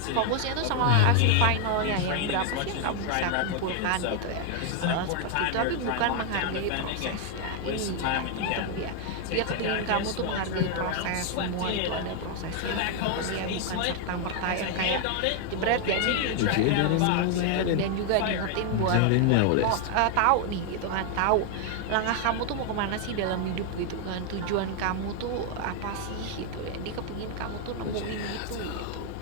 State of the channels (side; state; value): both; different; correlation 0.00